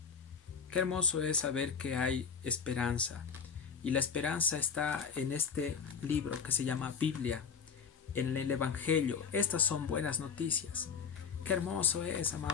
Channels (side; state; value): right; quieter; 6.5 dB